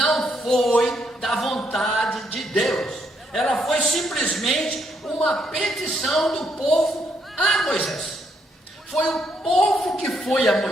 foi da vontade de Deus. Ela foi simplesmente uma petição do povo a Moisés. Foi o povo que foi a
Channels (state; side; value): normal; both; correlation 0.74